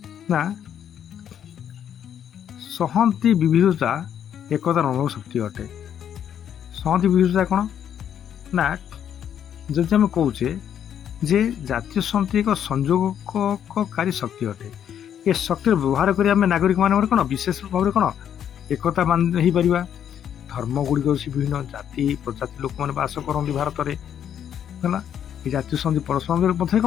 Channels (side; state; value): right; quieter; 9.3 dB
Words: ନା, ସଂହତି ବିବିଧତା ଏକତାର ଅନୁଭବ ଶକ୍ତି ଅଟେ। ସଂହତି ବିବିଧତା କ'ଣ ନା, ଯଦି ଆମେ କହୁଛେ ଯେ ଜାତୀୟ ସଂହତି ଏକ ସଂଯୋଗକାରୀ ଶକ୍ତି ଅଟେ, ଏ ଶକ୍ତିର ବ୍ୟବହାର କରି ଆମେ ନାଗରିକମାନଙ୍କର କ'ଣ ବିଶେଷ ଭାବରେ କ'ଣ ଏକତା ହେଇପାରିବା। ଧର୍ମ ଗୁଡ଼ିକ ଅଛି ବିଭିନ୍ନ, ଜାତି ପ୍ରଜାତି ଲୋକମାନେ ବାସ କରନ୍ତି ଭାରତରେ। ହେଲା, ଏ ଜାତୀୟ ସଂହତି ପରସ୍ପର ମଧ୍ୟରେ